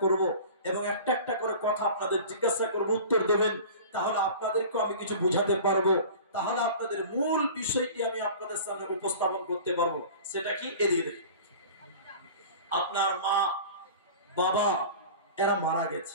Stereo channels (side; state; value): both; inverted; correlation -0.39